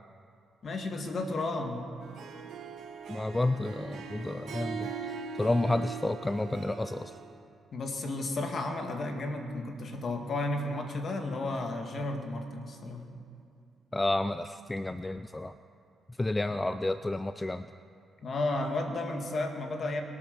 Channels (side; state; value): both; normal; correlation 0.88